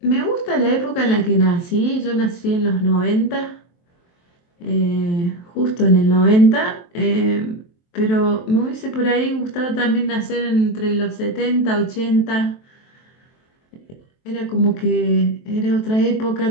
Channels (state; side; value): late; right; 23 ms